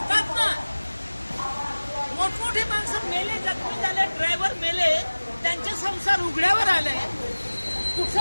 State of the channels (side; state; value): both; inverted; correlation -1.00